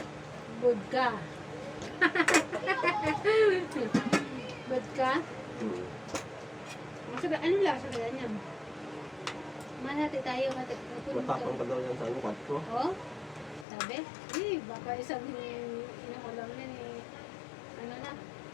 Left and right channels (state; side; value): drops out; right; at 13.7 s